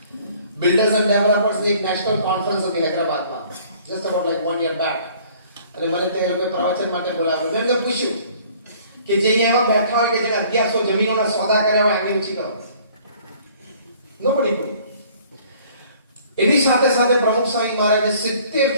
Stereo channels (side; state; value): both; inverted; correlation -0.55